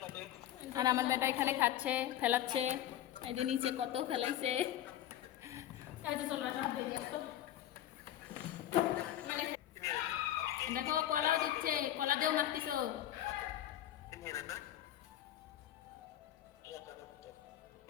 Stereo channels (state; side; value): quieter; right; 12.3 dB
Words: আর আমার বেটা এখানে খাচ্ছে, ফেলাচ্ছে। এই যে নিচে কত ফেলাইছে। দেখো কলাও দিচ্ছে, কলা দিয়েও মাখতিস।